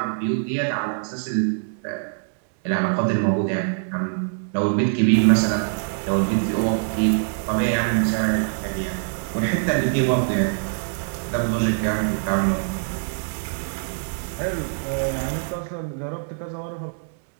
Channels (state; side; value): silent; left; 63 dB below the other